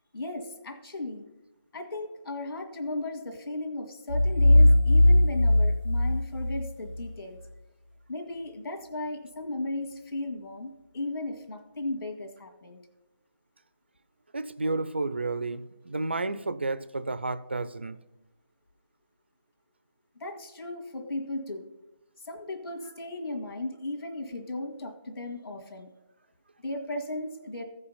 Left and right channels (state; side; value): inverted; both; correlation -0.94